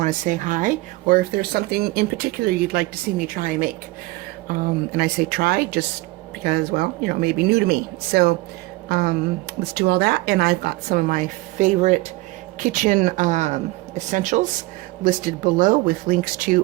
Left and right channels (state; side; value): quieter; left; 21.0 dB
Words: to say hi, or if there's something in particular you'd like to see me try and make. And I say try just because, well, you know, it may be new to me. So let's do all that. And I've got some of my favorite kitchen essentials listed below with links